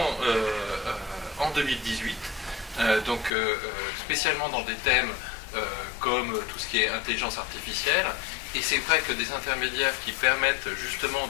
2018, spécialement dans des thèmes comme tout ce qui est intelligence artificielle. Et c'est vrai que des intermédiaires qui permettent justement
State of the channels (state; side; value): drops out; right; at 3.3 s